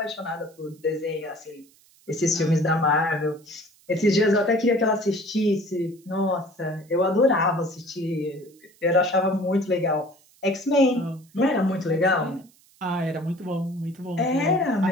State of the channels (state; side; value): noise; right; hiss, 30 dB below the sound